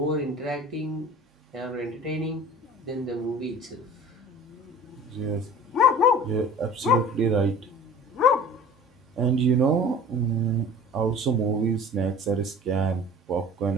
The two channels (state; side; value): normal; both; correlation 0.43